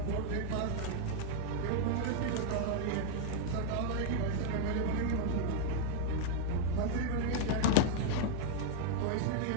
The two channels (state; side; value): different; both; correlation -0.01